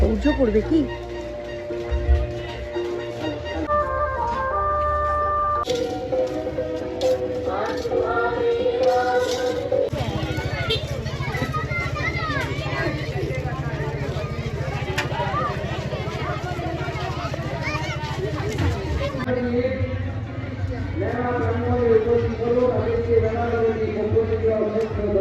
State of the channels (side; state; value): both; identical; correlation 1.00